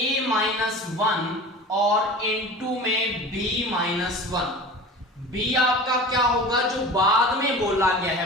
और इनटू में b-1। b आपका क्या होगा? जो बाद में बोला गया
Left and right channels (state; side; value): normal; both; correlation 0.36